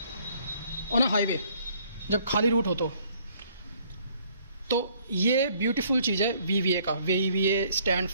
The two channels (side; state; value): both; inverted; correlation -0.62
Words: ऑन अ हाईवे जब खाली रूट हो तो ये ब्यूटीफुल चीज़ है VVA का। VVA stand